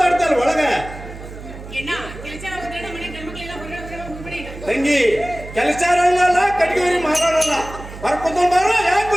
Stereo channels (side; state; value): right; noise; hum, 13 dB below the sound